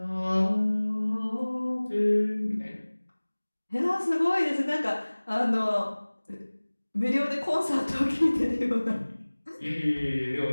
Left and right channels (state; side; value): inverted; both; correlation -1.00